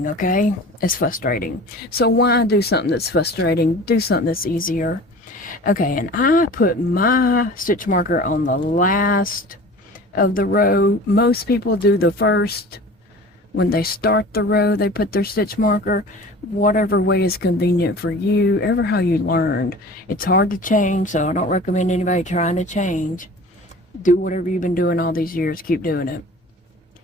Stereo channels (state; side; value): normal; both; correlation 0.41